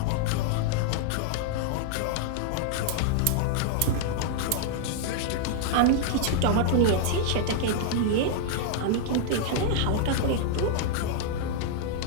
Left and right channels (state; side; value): different; both; correlation -0.01